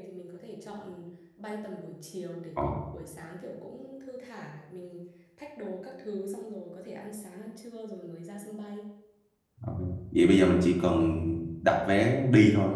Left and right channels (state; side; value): identical; both; correlation 1.00